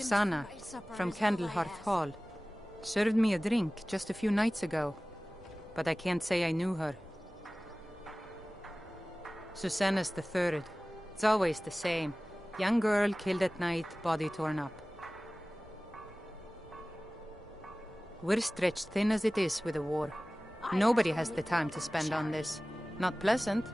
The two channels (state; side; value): normal; both; correlation 0.98